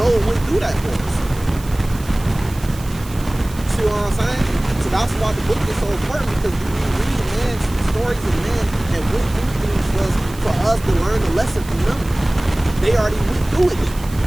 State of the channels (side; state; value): right; noise; hiss, 19 dB below the sound